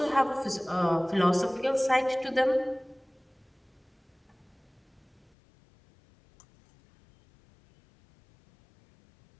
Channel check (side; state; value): right; drops out; at 5.3 s